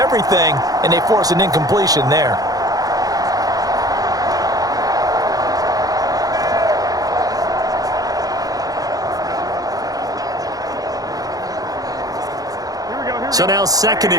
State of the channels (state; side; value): late; left; 0.18 ms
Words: and they force an incompletion there. So now 2nd